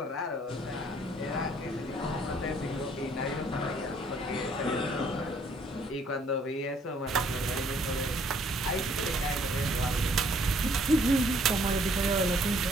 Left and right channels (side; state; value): both; normal; correlation 0.63